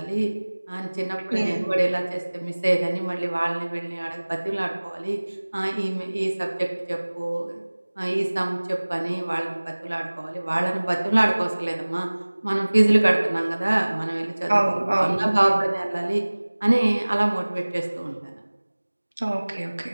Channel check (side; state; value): both; inverted; correlation -1.00